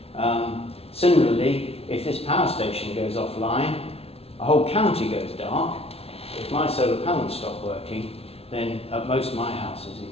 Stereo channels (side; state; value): right; late; 0.29 ms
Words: Similarly, if this power station goes offline, a whole county goes dark. If my solar panels stop working, then at most my house is